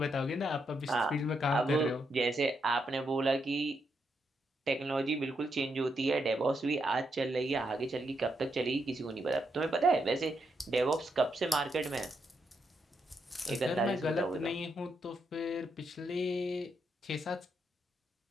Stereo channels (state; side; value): normal; both; correlation 0.80